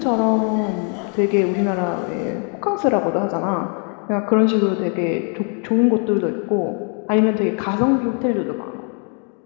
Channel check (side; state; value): right; quieter; 38.9 dB